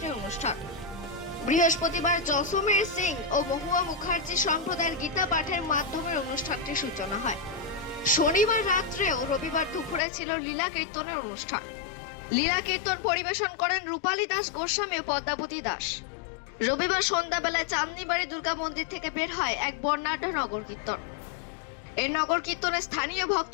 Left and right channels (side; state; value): right; drops out; at 10.0 s